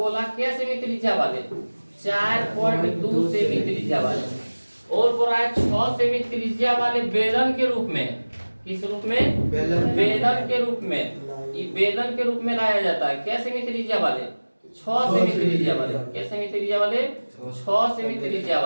क्या सेमी त्रिज्या वाले 4.2 सेमी त्रिज्या वाले, और बोल रहा है 6 सेमी त्रिज्या वाले बेलन के रूप में। किस रूप में, बेलन के रूप में। ये बेलन के रूप में लाया जाता है। क्या सेमी त्रिज्या वाले 6 सेमी त्रिज्या वाले। क्या सेमी त्रिज्या वाले 6 सेमी त्रिज्या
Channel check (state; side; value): inverted; both; correlation -1.00